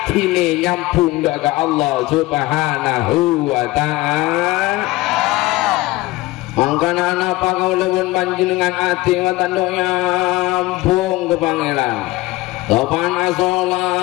nyampung ke Allah Subhanahu wa ta'ala. Mangkana napa kau lewat panjenengan ati watando nyampung ke pangeran Topan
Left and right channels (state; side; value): quieter; right; 19.4 dB